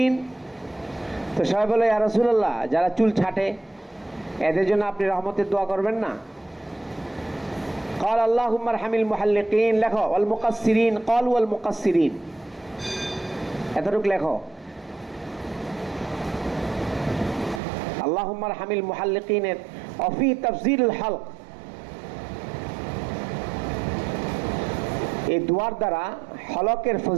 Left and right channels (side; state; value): left; drops out; at 17.6 s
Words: তো সবাই বলে ইয়া রাসূলুল্লাহ যারা চুল ছাটে এদের জন্য আপনি রহমতের দোয়া করবেন না। قال اللهم ارحم المحلقين, লেখো ওয়াল মুকাসসিরিন, ক্বালু ওয়াল মুকাসসিরিন, এতটুকু লেখো। اللهم ارحم المحلقين وفي تفضيل الحلق, এই দুয়ার দ্বারা হলকের